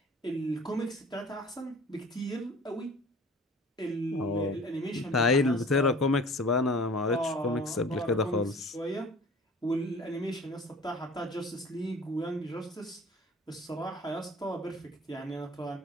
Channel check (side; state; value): both; normal; correlation 0.45